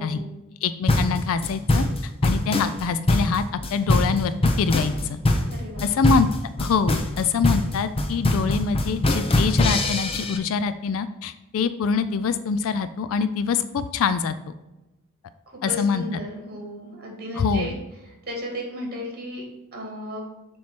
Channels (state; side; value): quieter; right; 3.2 dB